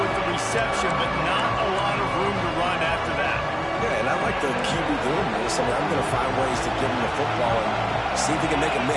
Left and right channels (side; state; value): both; identical; correlation 1.00